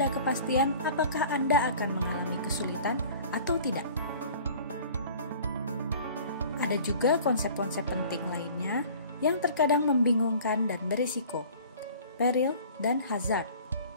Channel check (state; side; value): inverted; both; correlation -0.46